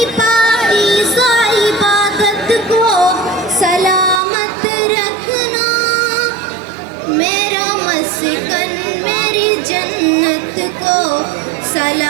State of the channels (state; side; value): drops out; left; at 4.2 s